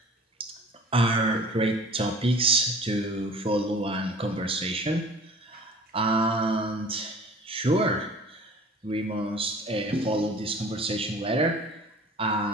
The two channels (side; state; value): both; normal; correlation 0.45